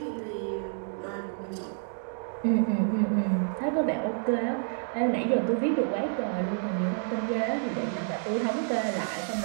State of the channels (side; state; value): left; silent; 59 dB below the other